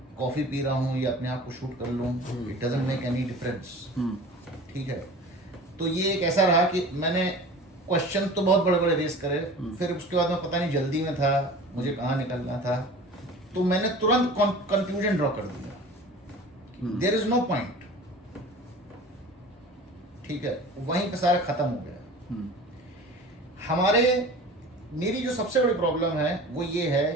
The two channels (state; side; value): normal; both; correlation 0.39